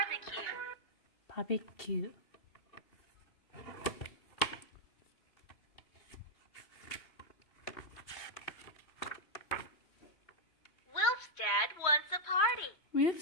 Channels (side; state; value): right; late; 3.0 ms